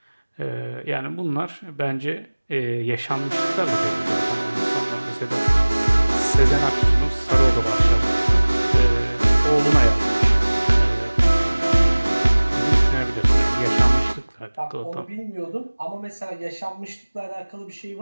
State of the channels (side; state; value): both; inverted; correlation -1.00